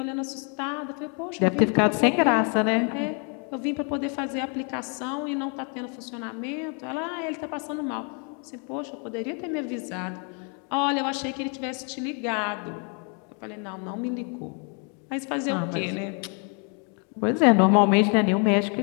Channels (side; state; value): right; quieter; 38.3 dB